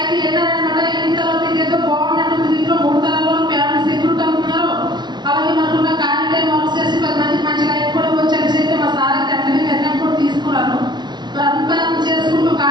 ఏంటనమాట ఎన్ని తర్వాత ఇదేదో బాగున్నట్టు దీంట్లో 3 తరాల్లో ఫ్యామిలీ సెక్యూరిటీ అనుకున్నారు. అలాగే మనకున్న ఖాళీ టైం వర్క్ చేసి 10 మందికి మంచి లైఫ్ కూడా వచ్చేసి అయితే మా సార్ అయితే అన్ని నిర్ణయం కూడా తీసుకున్నాను. మరి అంతా చేసుకుంటూ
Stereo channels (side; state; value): left; late; 0.21 ms